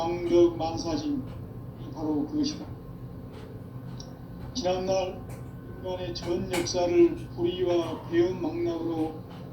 만사짐이 바로 그것이다. 지난날 인간의 전 역사를 불의와 배움 망락으로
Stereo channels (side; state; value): both; identical; correlation 1.00